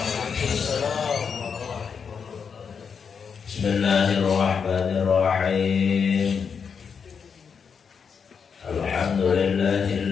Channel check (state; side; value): quieter; right; 6.3 dB